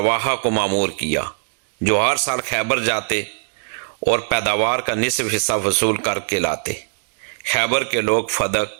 کو مامور کیا، جو ہر سال خیبر جاتے اور پیداوار کا نصف حصہ وصول کر کے لاتے۔ خیبر کے لوگ فدق،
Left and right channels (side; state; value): left; silent; digital silence